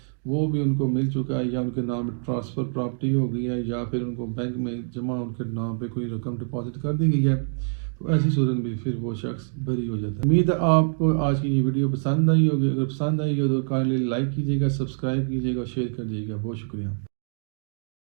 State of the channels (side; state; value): left; silent; digital silence